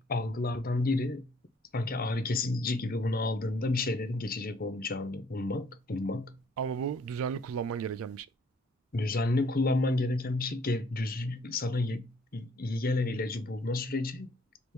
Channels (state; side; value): normal; both; correlation 0.62